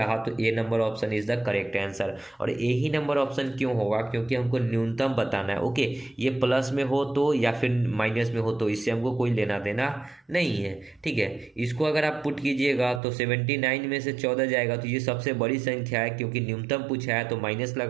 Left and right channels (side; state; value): left; drops out; at 13.0 s